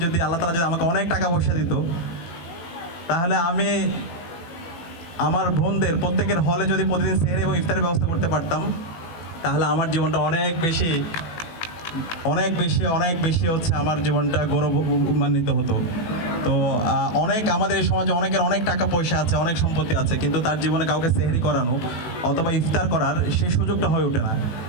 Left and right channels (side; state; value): right; late; 18 ms